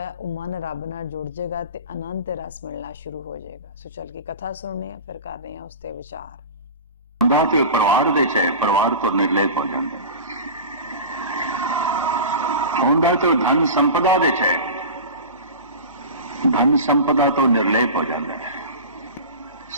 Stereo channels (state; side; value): inverted; both; correlation -0.32